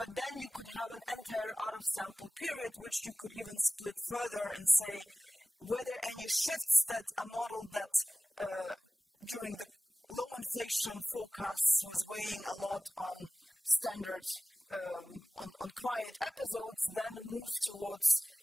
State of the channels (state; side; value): normal; both; correlation 0.97